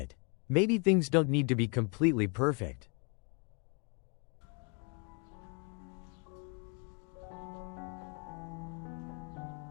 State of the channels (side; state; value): right; quieter; 33.9 dB